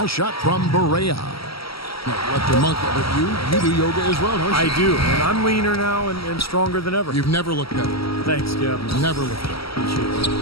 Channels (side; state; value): right; late; 0.75 ms